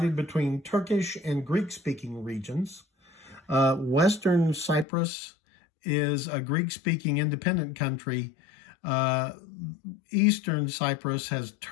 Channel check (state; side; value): drops out; right; at 4.9 s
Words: between Turkish and Greek-speaking regions. Western Cyprus is a Greek-speaking independent country. Eastern Cyprus has